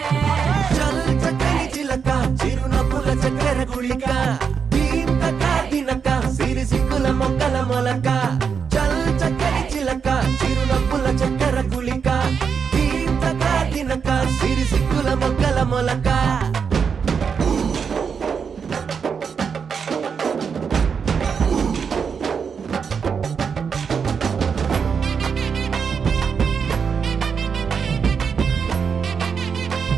చల్ చక్కని చిలక చిరునవ్వుల చక్కెర గుళిక సిరి సిక్కుల మొక్కల మొలక చల్ చక్కని చిలక చిరునవ్వుల చక్కెర గుళిక తీర్థగా తినక సిరి సిక్కుల మొక్కల మొలక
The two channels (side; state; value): left; quieter; 6.3 dB